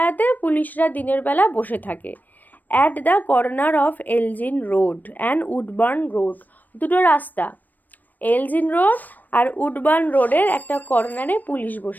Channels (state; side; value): late; right; 0.085 ms